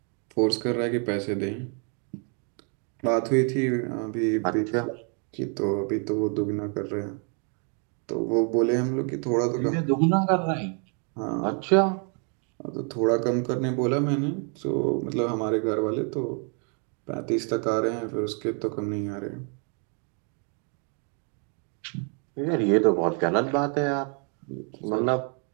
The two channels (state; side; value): quieter; left; 39.9 dB